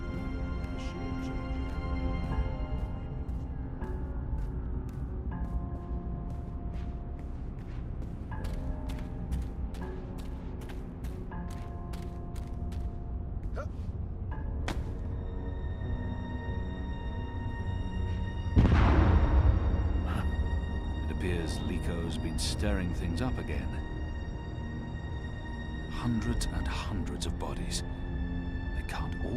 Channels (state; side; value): identical; both; correlation 1.00